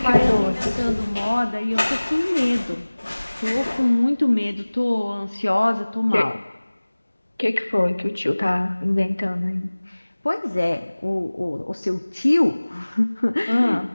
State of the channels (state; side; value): inverted; both; correlation -1.00